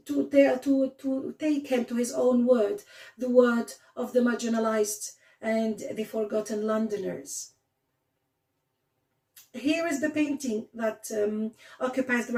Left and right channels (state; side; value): identical; both; correlation 1.00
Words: take him to his own word, the word of the marginalized and the forgotten Londoners. Here is the painting that occupies the